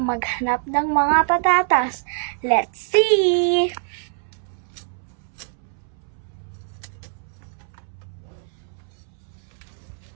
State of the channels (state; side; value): silent; left; 63 dB below the other